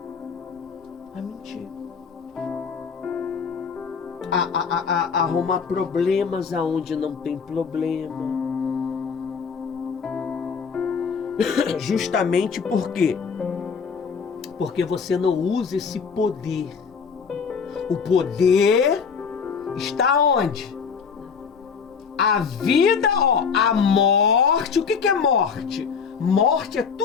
A mentir. A arrumar problemas aonde não tem problema. Justamente por quê? Porque você não usa esse poder. O poder está onde? A vida, ó, a morte. O que é morte? Morte é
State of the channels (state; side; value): quieter; right; 6.0 dB